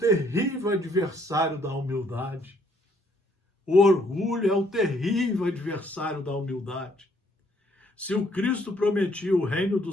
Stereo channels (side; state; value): both; normal; correlation 0.67